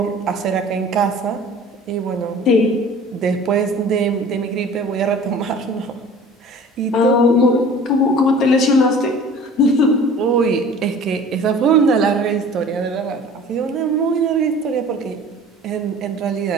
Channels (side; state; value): both; normal; correlation 0.45